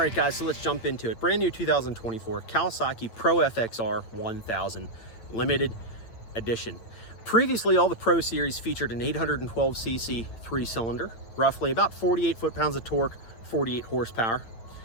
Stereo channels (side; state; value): right; late; 8.9 ms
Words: guys, so let's jump into it. Brand new 2024 Kawasaki PRO-FXR 1000 limited edition. Previously, all the Pro Series featured an 812cc three-cylinder, roughly about 48 foot-pounds of torque, 48 horsepower,